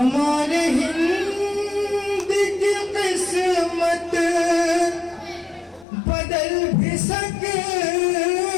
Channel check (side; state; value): right; drops out; at 5.9 s